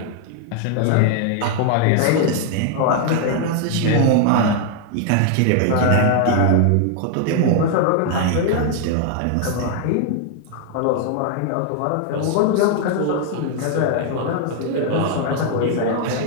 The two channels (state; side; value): different; both; correlation 0.00